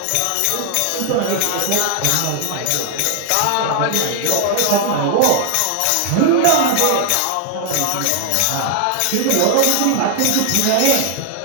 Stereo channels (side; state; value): both; different; correlation 0.00